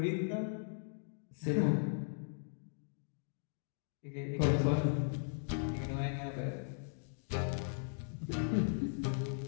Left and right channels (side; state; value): right; silent; digital silence